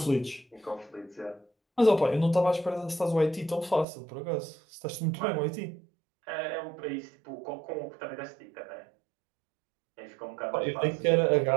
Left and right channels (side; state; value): left; drops out; at 3.9 s